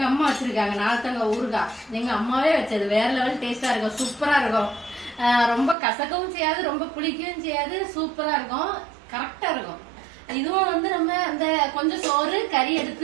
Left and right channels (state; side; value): drops out; left; at 5.8 s